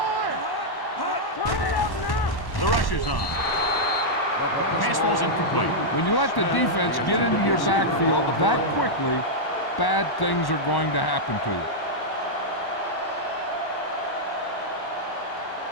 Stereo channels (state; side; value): late; right; 1.1 ms